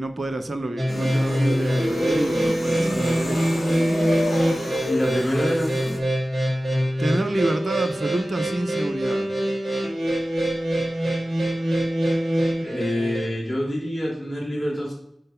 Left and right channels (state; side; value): normal; both; correlation 0.96